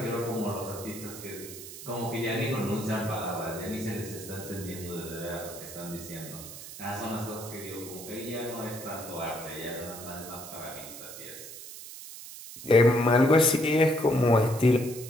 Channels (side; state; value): right; noise; hiss, 13 dB below the sound